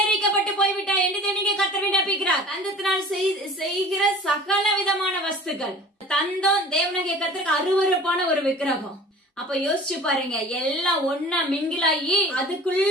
போய்விட்டாய் என்று தேவனுடைய கர்த்தர் விண்ணப்பிக்கிறார். தந்தத்தினால் செய்கிற சகல விதமான வஸ்துக்கள். தந்தம் தேவனுடைய கர்த்தருக்கு அருவருப்பான ஒரு விக்கிரகம். அப்ப யோசிச்சு பாருங்க, எல்லாம் ஒன்னா மிங்கிலாகி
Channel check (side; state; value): both; normal; correlation 0.43